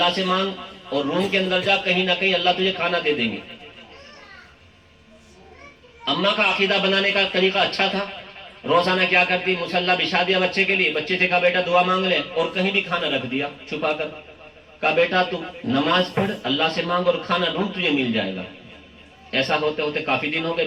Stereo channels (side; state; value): both; identical; correlation 1.00